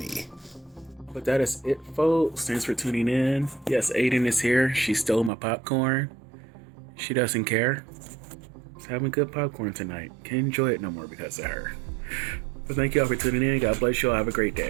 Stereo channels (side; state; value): left; drops out; at 5.3 s